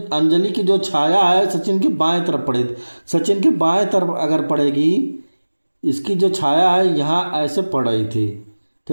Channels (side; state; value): both; inverted; correlation -1.00